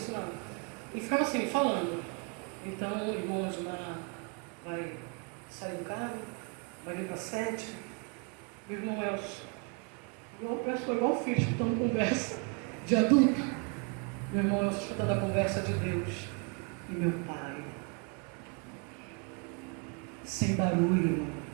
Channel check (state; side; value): quieter; left; 35.2 dB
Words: não. Ele ficava assim, falando. Então o irmão Osmar vai sair do carro, vai vir para 7. O irmão Elcio, igual filho, escutando conversa de adulto. Meu irmão Elcio escutando a conversa de Deus e meu pai. Sem barulho, irmão.